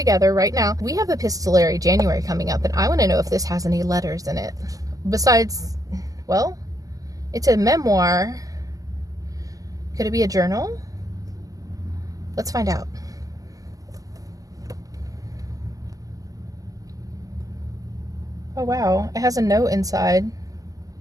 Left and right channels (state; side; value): late; left; 0.17 ms